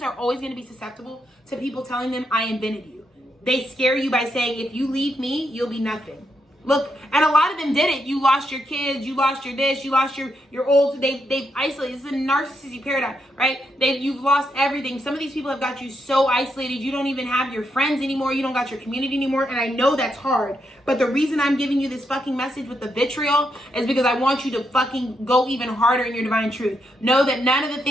are always going to be susceptible to people telling them, I invented you. They scare you by saying, if you leave me, you'll be nothing. Look, and a lot of them did it. You lost your kids, you lost your this, you lost your old, they've isolated. This is a narcissistic paradigm, right? You've lost everything. Some of these people have got you so isolated, you don't even have your friends anymore, you don't got your community anymore, and I know that's hard. But the reason I'm giving you this fucking message with the vitriol is because I want you to fucking go even harder in your divine truth. Know that none of the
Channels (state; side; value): normal; both; correlation 0.81